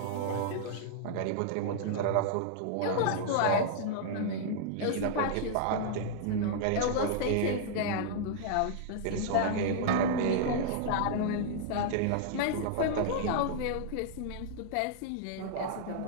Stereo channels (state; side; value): different; both; correlation -0.01